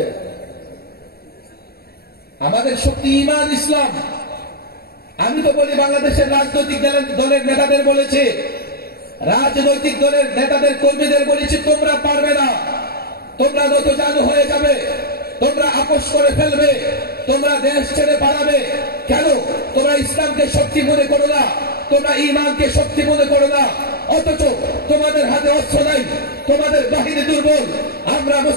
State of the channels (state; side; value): late; right; 0.45 ms